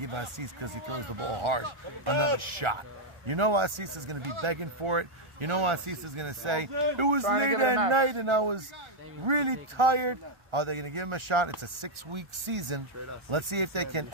Assis because he throws the ball hard another shot? You know Assis is going to be begging for it. You know Assis is going to say, it was late at night and I was really tired. Are they going to give him a shot? It's a 6-week season. Let's see if they can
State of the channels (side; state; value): left; late; 1.4 ms